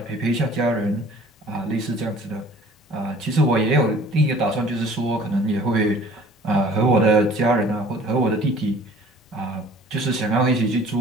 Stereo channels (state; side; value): normal; both; correlation 0.50